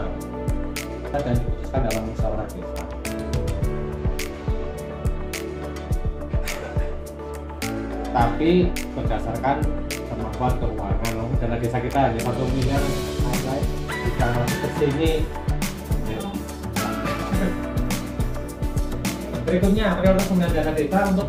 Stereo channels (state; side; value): identical; both; correlation 1.00